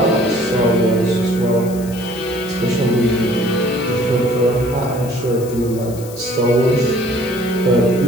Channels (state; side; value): noise; left; hiss, 17 dB below the sound